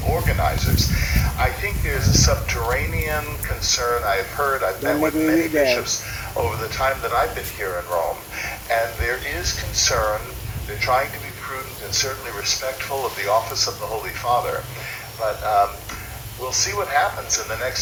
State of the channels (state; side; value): identical; both; correlation 1.00